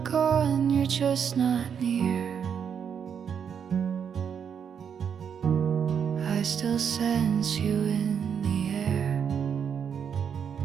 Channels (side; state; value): left; quieter; 7.5 dB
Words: gone, you're just not near. I still sense you in the air.